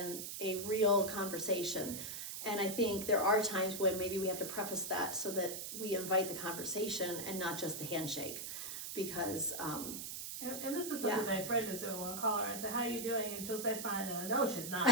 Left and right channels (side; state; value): right; noise; hiss, 6 dB below the sound